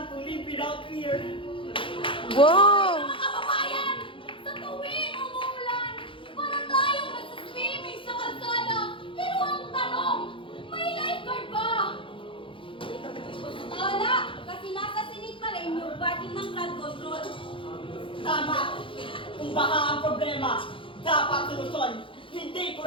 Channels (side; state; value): right; late; 0.25 ms